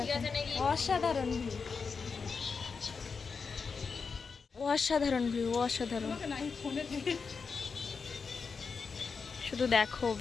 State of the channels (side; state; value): right; quieter; 5.3 dB